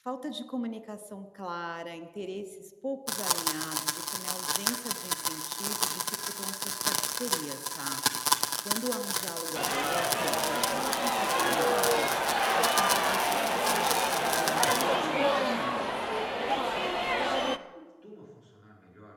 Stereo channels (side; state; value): both; identical; correlation 1.00